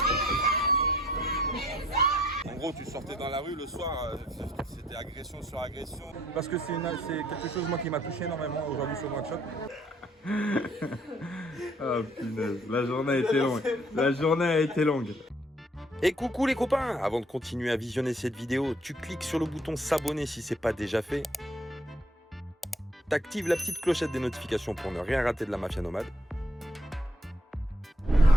En gros, tu sortais dans la rue le soir, c'était agression sur agression. Parce que c'est quelque chose moi qui m'a touché énormément aujourd'hui sur One Shot. Oh punaise, la journée a été longue. La journée a été longue. Et coucou les copains! Avant de continuer à visionner cette vidéo, tu cliques sur le bouton s'abonner si ce n'est pas déjà fait. T'actives la petite clochette des notifications pour ne rien rater de la mafia nomade.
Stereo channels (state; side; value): normal; both; correlation 0.65